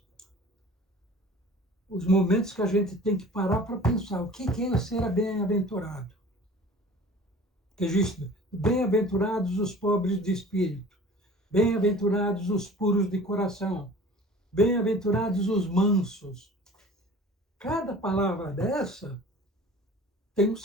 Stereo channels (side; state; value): both; normal; correlation 0.44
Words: os momentos que a gente tem que parar para pensar o que é ser bem-aventurado. Que existe bem-aventurados os pobres de espírito, bem-aventurados os puros de coração, bem-aventurados os mansos. Cada palavra dessa tem um